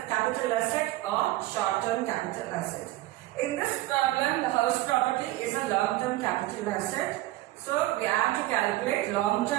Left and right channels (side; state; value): left; quieter; 17.1 dB